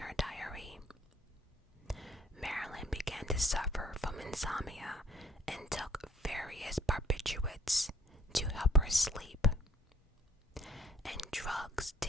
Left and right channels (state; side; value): normal; both; correlation 0.60